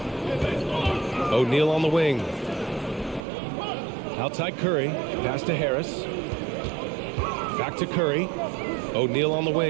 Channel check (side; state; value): left; drops out; at 3.2 s